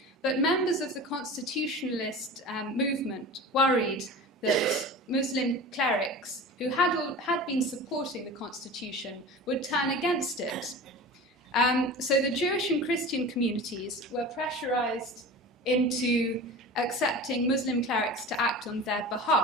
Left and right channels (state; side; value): normal; both; correlation 0.34